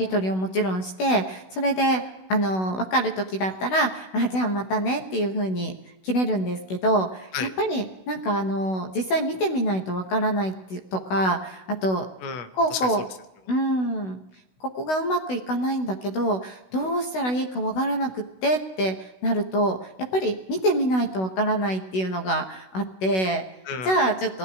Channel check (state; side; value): late; right; 16 ms